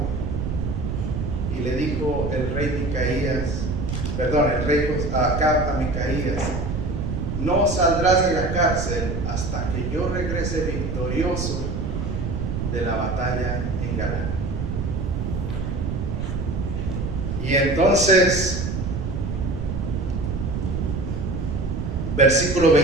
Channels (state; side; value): noise; right; rumble, 2 dB below the sound